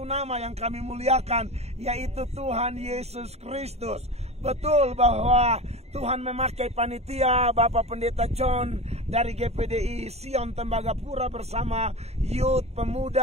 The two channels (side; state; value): left; late; 0.31 ms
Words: nama yang kami muliakan, yaitu Tuhan Yesus Kristus. Betul bahwa Tuhan memakai panitia Bapak Pendeta John dari GPDI Sion Tembagapura bersama youth